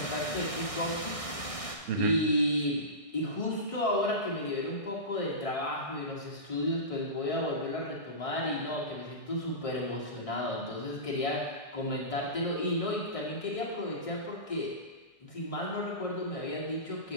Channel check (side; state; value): right; late; 1.6 ms